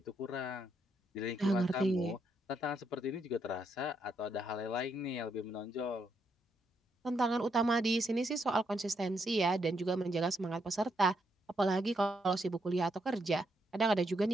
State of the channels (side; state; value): both; normal; correlation 0.77